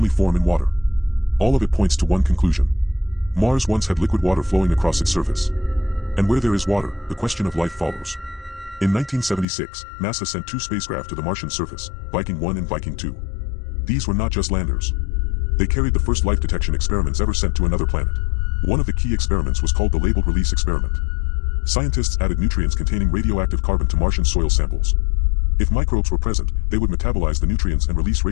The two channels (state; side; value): drops out; right; at 9.5 s